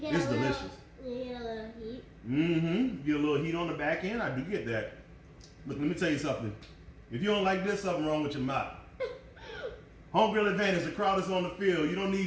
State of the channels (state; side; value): identical; both; correlation 1.00